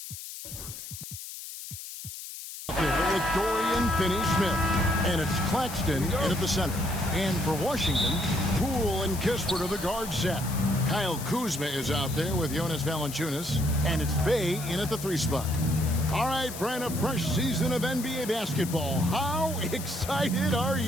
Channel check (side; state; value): left; noise; hiss, 11 dB below the sound